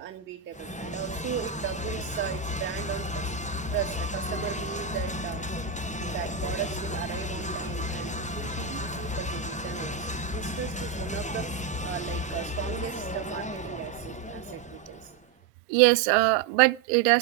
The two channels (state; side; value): quieter; left; 6.3 dB